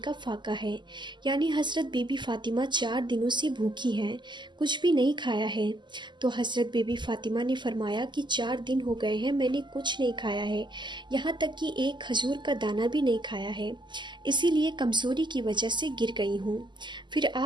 فاقہ ہے، یعنی حضرت بی بی فاطمہ 4 دنوں سے بھوکی ہیں، کچھ بھی نہیں کھایا ہے۔ تو حضرت بی بی فاطمہ نے فرمایا کہ 4 دن ہو گئے ہیں، میں نے کچھ نہیں کھایا ہے، یہاں تک کہ ایک کھجور کا دانہ بھی نہیں کھایا ہے، اسی لیے کمزوری کی وجہ سے گر گئی ہوں۔ پھر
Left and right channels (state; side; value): late; left; 0.22 ms